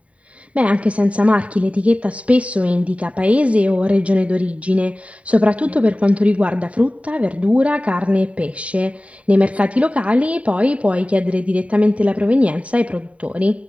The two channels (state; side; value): late; left; 0.066 ms